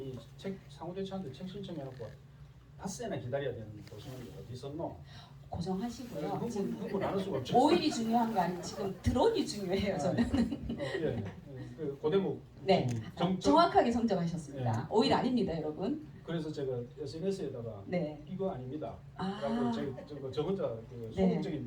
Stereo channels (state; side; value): identical; both; correlation 1.00